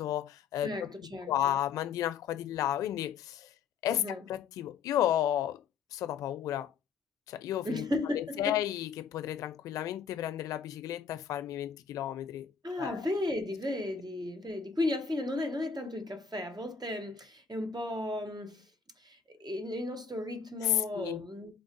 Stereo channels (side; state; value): right; quieter; 6.4 dB